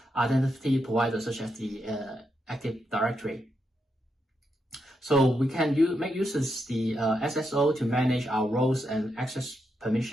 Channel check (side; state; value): both; normal; correlation 0.83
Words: identity providers such as the Active Directory. So we can make use of the SSO to manage our roles and access